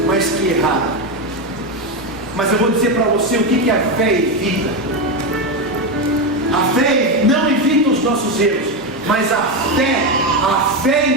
mas que erraram. Mas eu vou dizer para você o que a fé evita. A fé não evita os nossos erros, mas a fé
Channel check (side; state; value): both; normal; correlation 0.11